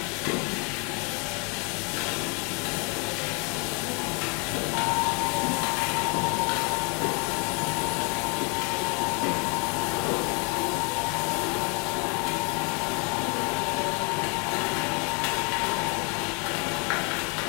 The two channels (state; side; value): quieter; right; 34.3 dB